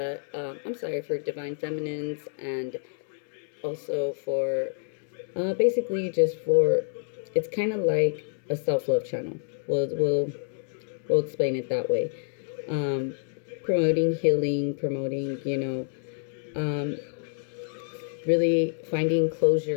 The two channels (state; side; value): silent; right; digital silence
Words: for Divine Feminines, and also for, basically just for, it's kind of like a self-love channel. We'll explain it that way. Promoting healing, promoting, really finding